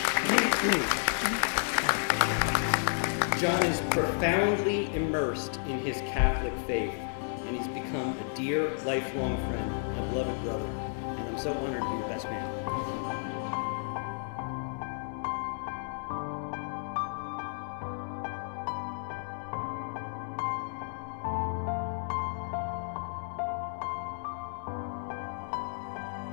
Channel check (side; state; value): right; silent; 57 dB below the other